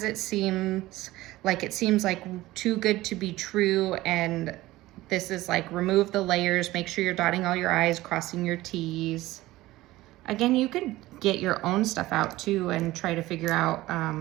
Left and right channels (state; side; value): quieter; left; 17.5 dB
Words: it seems like too good to be true, and this is like remove the layers, make sure you're dotting all your I's, crossing your T's. Again, you could get your own stuff out too and try to figure out